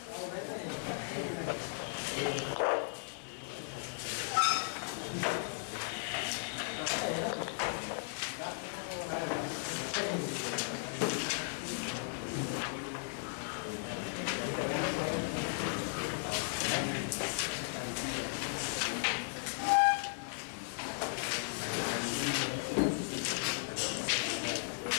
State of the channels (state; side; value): silent; right; digital silence